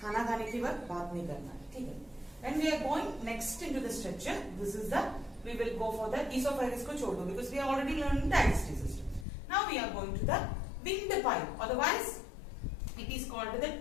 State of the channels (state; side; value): drops out; right; at 9.2 s